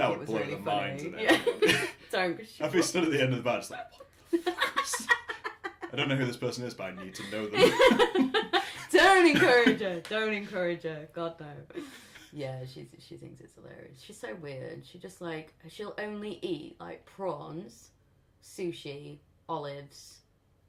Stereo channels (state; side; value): identical; both; correlation 1.00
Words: it was really funny. Yeah. Don't. I'd be stood at the end of the bar just like, what the fuck is this? I don't know who this person is, but I need to know them. Don't encourage her. God no. Yeah, she thinks it's hilarious. She's so weird. She'll only eat like prawns, sushi, olives.